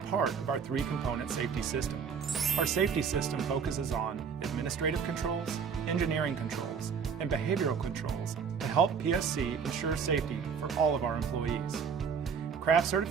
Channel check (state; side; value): quieter; left; 6.4 dB